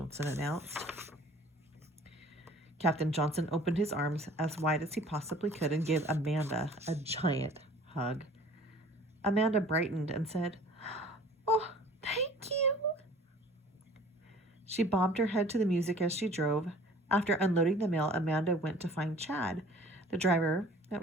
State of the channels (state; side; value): normal; both; correlation 0.49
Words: announced. Captain Johnson opened his arms as wide as he possibly could and gave Amanda a giant hug. Amanda brightened and said, "Oh, thank you." She bobbed her head to the music as she drove. After unloading the mail, Amanda went to find Chad, the driver that